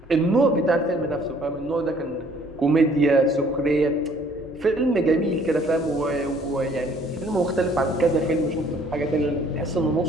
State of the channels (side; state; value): both; normal; correlation 0.59